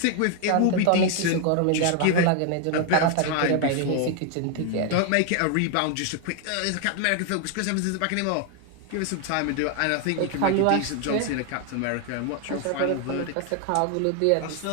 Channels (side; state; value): both; different; correlation 0.00